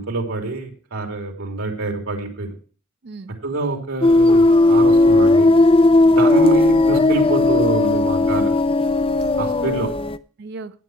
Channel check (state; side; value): normal; both; correlation 0.65